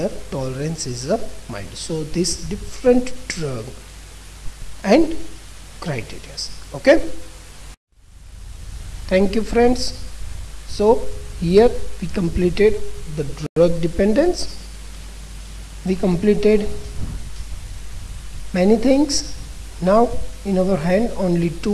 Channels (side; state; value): both; identical; correlation 1.00